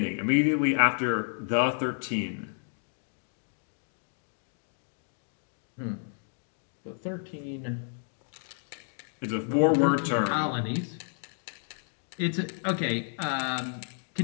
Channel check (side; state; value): right; silent; 57 dB below the other